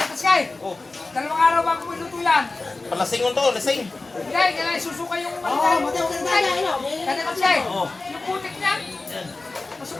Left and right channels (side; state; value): right; quieter; 3.4 dB